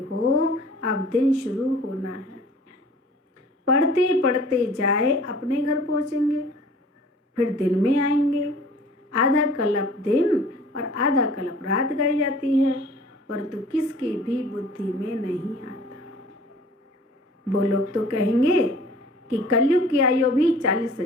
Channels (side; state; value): both; normal; correlation 0.48